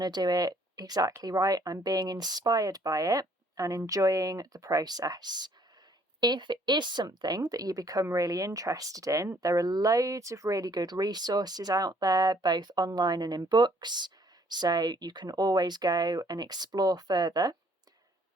do it exactly right. I'm being inspired by it and enjoying the process. If it is something that you become really interested in, there are loads of really good resources out there, both online and in books, so you can always go and explore further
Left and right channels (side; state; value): both; normal; correlation 0.62